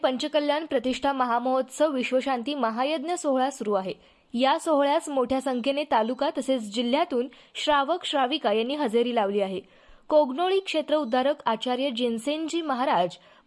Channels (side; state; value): both; identical; correlation 1.00